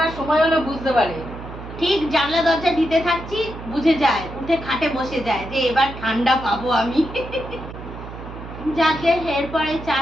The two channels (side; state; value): right; noise; hum, 12 dB below the sound